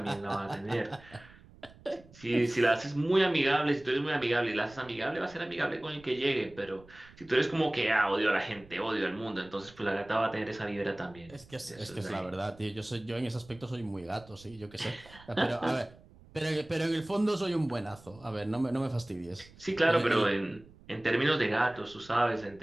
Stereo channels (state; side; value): noise; right; rumble, 23 dB below the sound